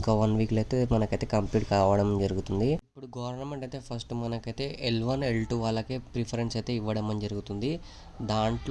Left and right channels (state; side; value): identical; both; correlation 1.00